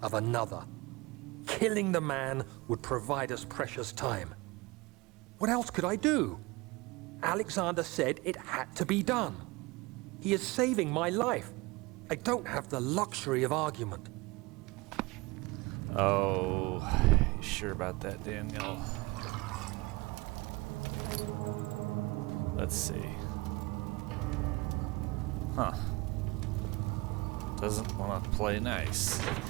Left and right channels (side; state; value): left; quieter; 23.6 dB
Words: of another. Killing the man would provide us precious time. What else could I do? Alexander said it had to be done. He is saving my life. I don't have the luxury of argument. Oh, you sure about that, Daniel? Let's see. Huh. Doesn't want to play nice.